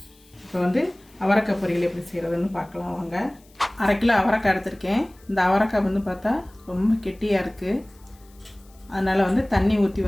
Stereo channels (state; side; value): noise; left; hiss, 30 dB below the sound